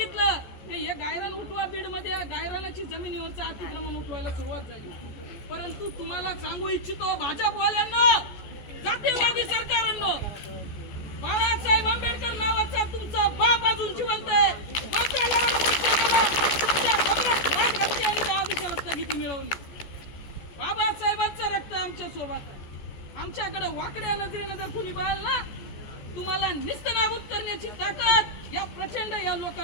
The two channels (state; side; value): late; right; 14 ms